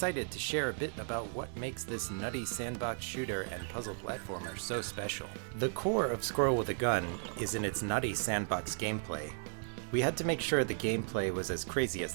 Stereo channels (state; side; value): silent; left; 54 dB below the other